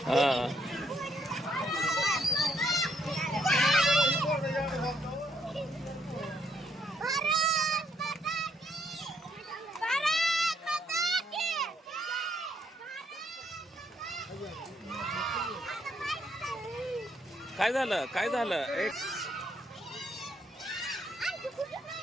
हा काय झालं काय झालं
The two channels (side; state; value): both; normal; correlation 0.72